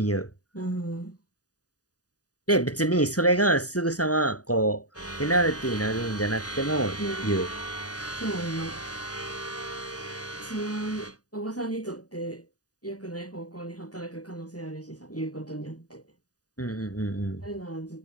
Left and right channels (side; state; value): right; late; 0.68 ms